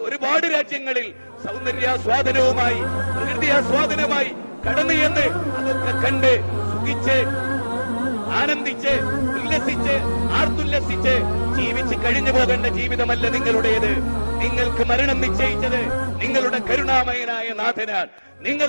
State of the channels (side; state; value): both; inverted; correlation -1.00